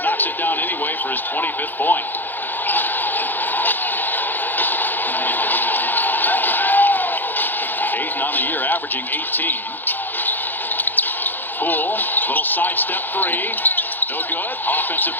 knocks it down anyway for his 25th point. Ayton on the year, averaging 18. Poole, little sidestep three. No good. Offensive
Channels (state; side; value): late; right; 0.089 ms